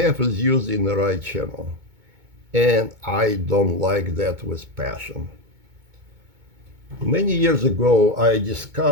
is used in the right channel. And I don't like that with passion. Many years ago, I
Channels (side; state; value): left; late; 2.2 ms